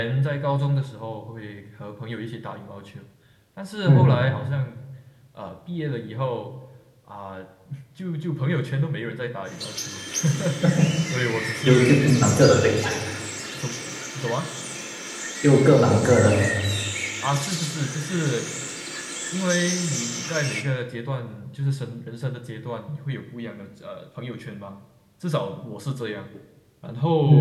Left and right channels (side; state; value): both; identical; correlation 1.00